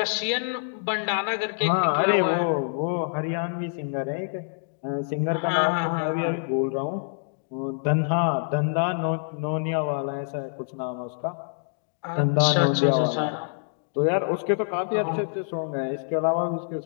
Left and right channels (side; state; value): right; silent; digital silence